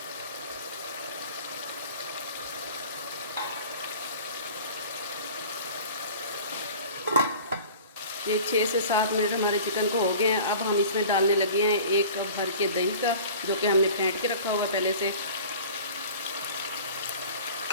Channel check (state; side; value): inverted; both; correlation -0.42